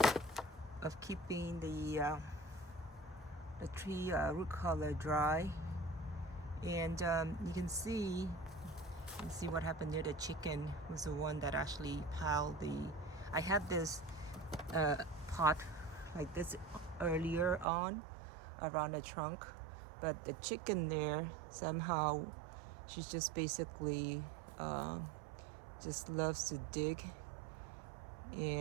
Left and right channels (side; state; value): left; drops out; at 17.7 s